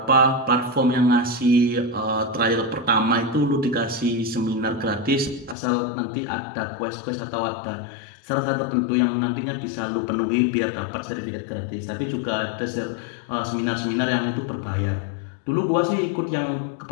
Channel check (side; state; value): right; drops out; at 5.6 s